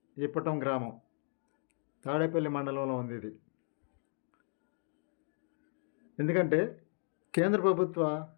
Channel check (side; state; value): right; silent; 54 dB below the other